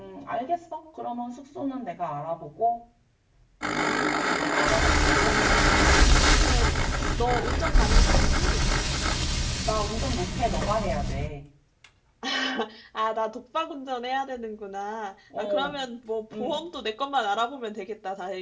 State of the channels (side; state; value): both; identical; correlation 1.00